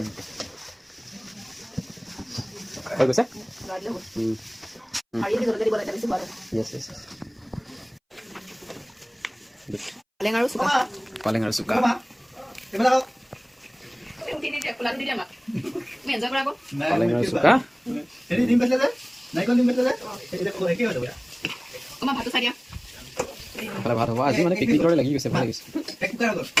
হৈ গৈছে য়েছ য়েছ পালেং আৰু চুকা পালেং আৰু চুকা পালেং আৰু চুকা এইফালে ভাত হ'ব আজি মানে পিকনিক দৰে লাগি গৈছে ভাল লাগিছে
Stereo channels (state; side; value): identical; both; correlation 1.00